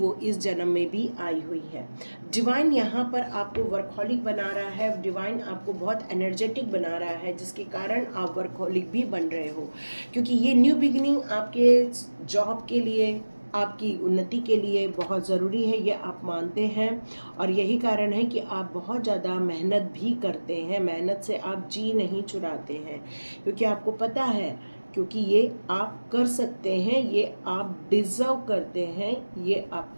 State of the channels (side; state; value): both; inverted; correlation -1.00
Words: इस जन्म में भी आई हुई है। डिवाइन यहाँ पर आपको वर्कहॉलिक बना रहा है, डिवाइन आपको बहुत एनर्जेटिक बना रहा है, जिसके कारण आप वर्कहॉलिक भी बन रहे हो। क्योंकि ये न्यू बिगिनिंग आपके जॉब के लिए, आपकी उन्नति के लिए बहुत ज़रूरी है, ये आप मानते हैं। और यही कारण है कि आप बहुत ज़्यादा मेहनत भी करते हैं, मेहनत से आप जी नहीं चुराते हैं, क्योंकि आपको पता है, क्योंकि ये आप कर सकते हैं, ये आप डिज़र्व करते हैं, ये